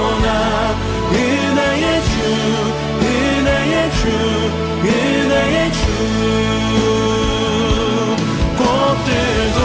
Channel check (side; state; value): both; identical; correlation 1.00